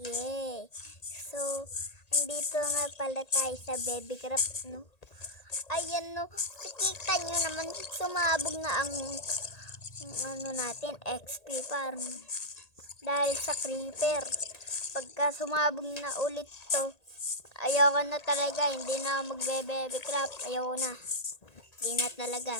Yay! So, andito nga pala tayo sa Baby Craft, no? Ayan, no, nakikita nyo naman, sumabog na ang ano natin, XP farm. Dahil sa creeper. Pagka sumabog na ulit to, ayoko na talaga, hindi na magbe-Baby Craft, ayoko na. Hindi na talaga,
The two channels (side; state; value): right; late; 1.8 ms